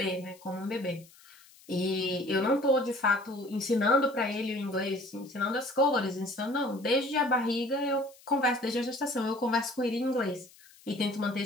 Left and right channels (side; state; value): left; noise; hiss, 25 dB below the sound